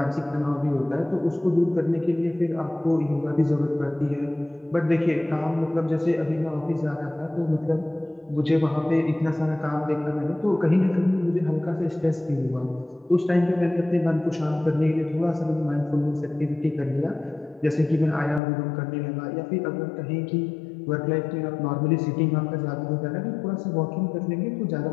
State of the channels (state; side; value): drops out; right; at 18.4 s